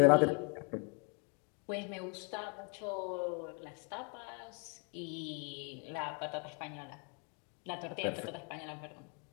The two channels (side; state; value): right; quieter; 38.0 dB